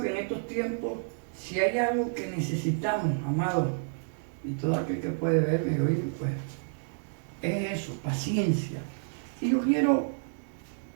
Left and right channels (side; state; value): left; silent; digital silence